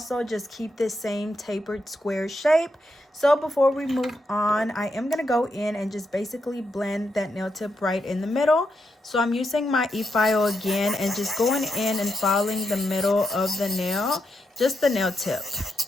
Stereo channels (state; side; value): normal; both; correlation 0.83